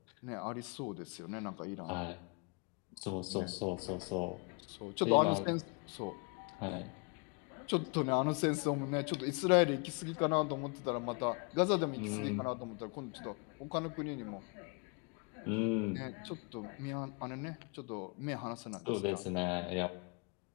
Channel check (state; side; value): quieter; right; 33.7 dB